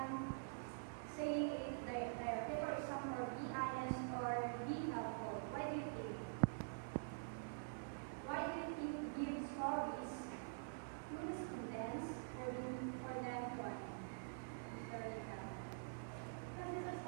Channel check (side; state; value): left; silent; digital silence